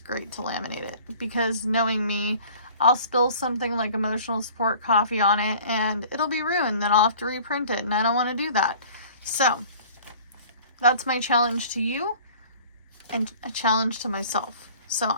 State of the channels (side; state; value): both; inverted; correlation -0.48